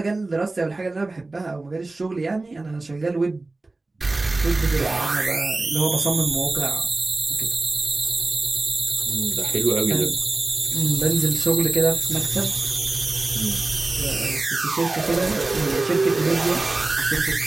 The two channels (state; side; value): quieter; left; 3.2 dB